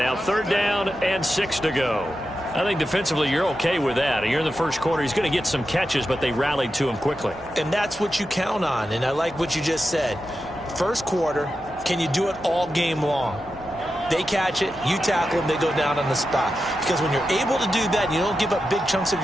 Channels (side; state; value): left; noise; hum, 23 dB below the sound